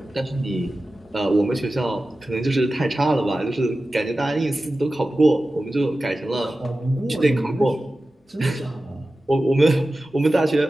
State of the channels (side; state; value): both; normal; correlation 0.94